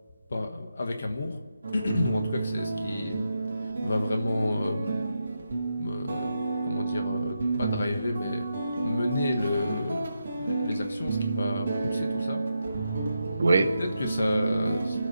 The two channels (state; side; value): inverted; both; correlation -0.86